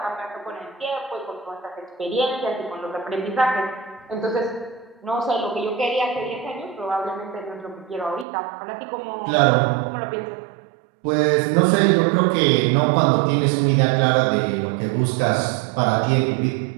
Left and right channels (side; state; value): left; drops out; at 8.2 s